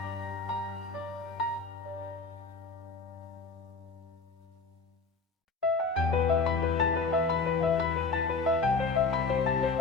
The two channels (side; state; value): right; quieter; 4.3 dB